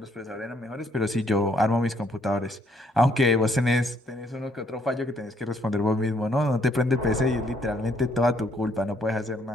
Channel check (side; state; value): both; normal; correlation 0.68